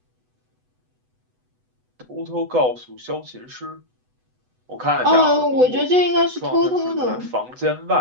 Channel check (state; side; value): late; left; 8.0 ms